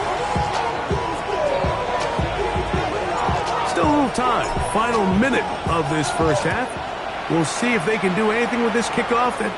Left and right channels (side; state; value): both; identical; correlation 1.00